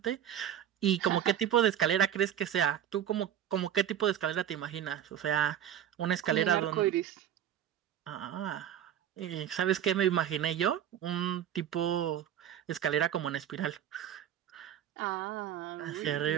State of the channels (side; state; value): left; quieter; 10.3 dB